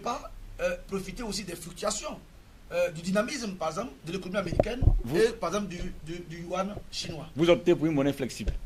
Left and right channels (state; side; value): identical; both; correlation 1.00